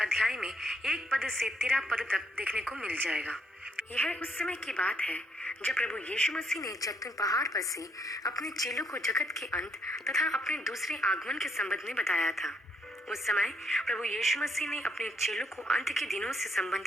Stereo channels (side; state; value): both; normal; correlation 0.72